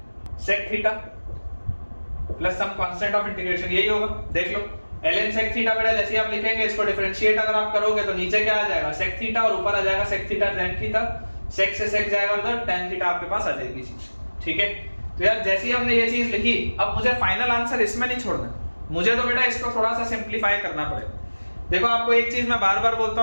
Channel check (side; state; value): both; inverted; correlation -1.00